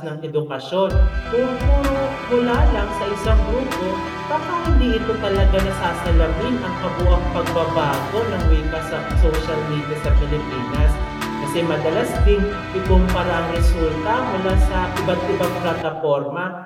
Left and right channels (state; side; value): identical; both; correlation 1.00